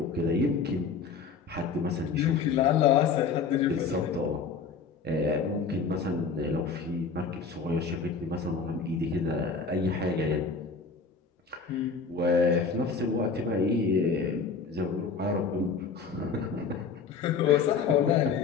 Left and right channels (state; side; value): quieter; right; 5.3 dB